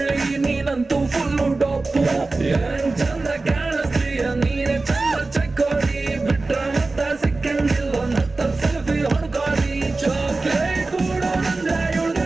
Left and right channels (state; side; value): quieter; left; 3.5 dB